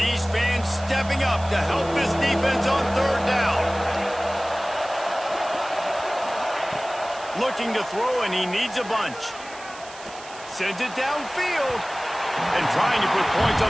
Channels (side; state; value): right; noise; hiss, 17 dB below the sound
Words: fans stepping up to help this defense on 3rd down. Looking to throw, and he needs a bunch. Sends it downfield. And trying to put points